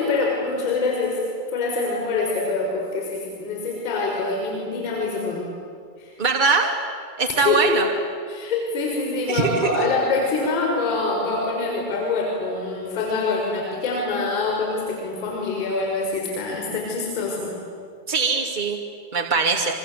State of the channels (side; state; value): left; late; 2.3 ms